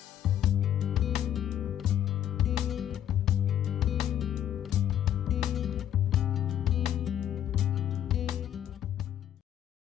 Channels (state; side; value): quieter; right; 10.7 dB